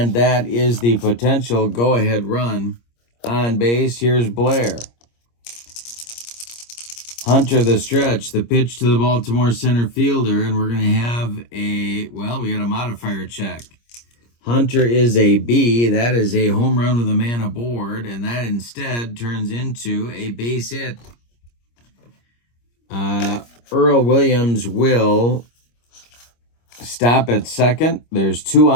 that is the potential go-ahead run on base. Here's Blair. Hunter the stretch, the pitch to the Baltimore center fielder, and we're going to have we got a modifier check. Hunter is a B. That is a home run with a man aboard, and that instead turns into a base hit. Earl Williams will stop at second. There's 2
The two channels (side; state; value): right; late; 26 ms